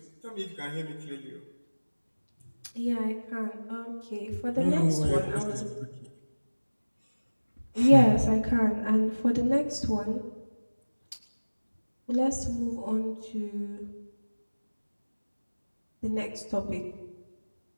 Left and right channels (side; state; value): both; inverted; correlation -1.00